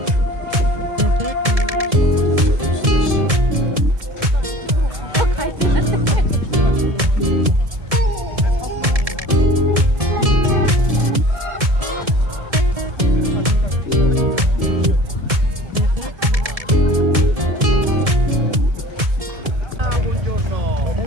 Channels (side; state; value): left; late; 1.7 ms